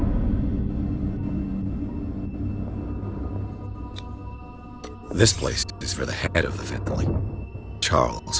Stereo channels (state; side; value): identical; both; correlation 1.00